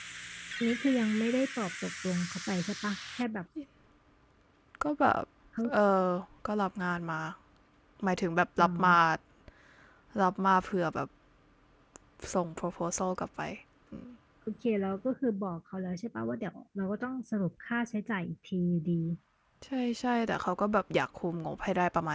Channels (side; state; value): both; identical; correlation 1.00